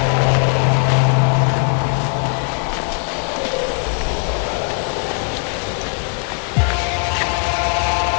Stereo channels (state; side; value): quieter; right; 38.0 dB